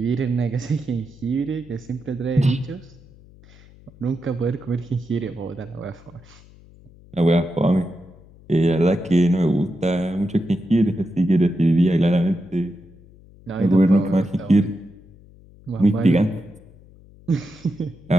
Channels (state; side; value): noise; left; hum, 24 dB below the sound